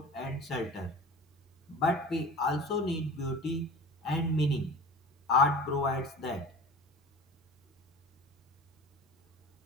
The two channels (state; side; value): normal; both; correlation 0.37